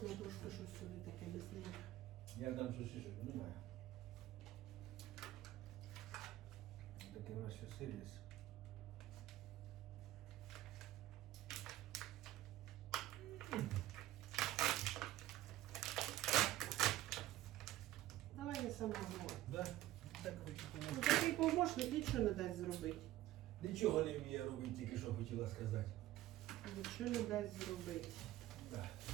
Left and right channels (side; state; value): left; quieter; 14.8 dB